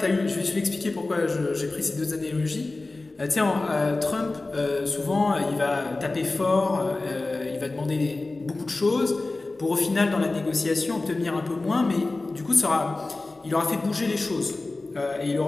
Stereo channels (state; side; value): quieter; right; 3.2 dB